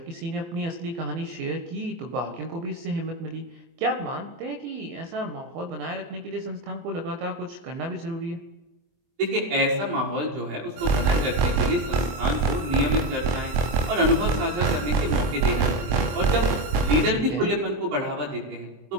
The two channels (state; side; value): late; left; 23 ms